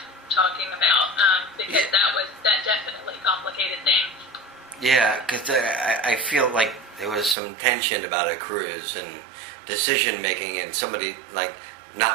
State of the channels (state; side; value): drops out; left; at 7.4 s